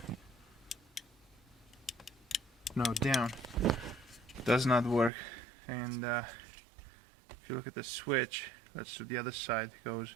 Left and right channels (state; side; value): drops out; left; at 5.1 s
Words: No, down. Does not work. And if you look at the switch, let's do the other side. It goes